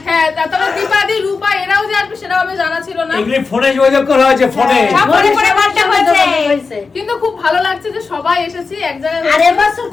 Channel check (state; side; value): quieter; right; 4.6 dB